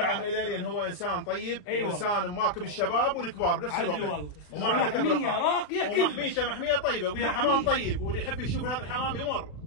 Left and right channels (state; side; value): late; right; 40 ms